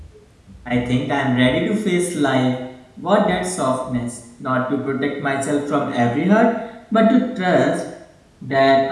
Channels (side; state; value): both; identical; correlation 1.00